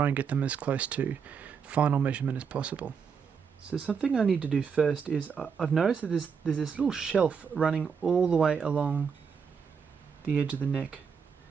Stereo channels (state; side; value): quieter; left; 6.4 dB